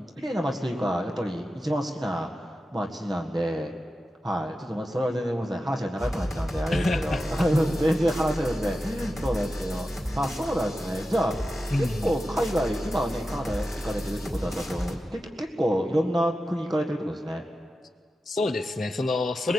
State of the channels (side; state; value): both; normal; correlation 0.92